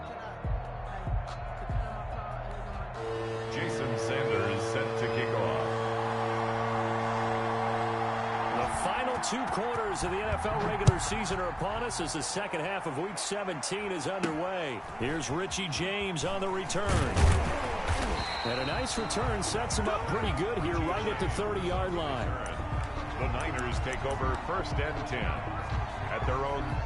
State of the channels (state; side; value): identical; both; correlation 1.00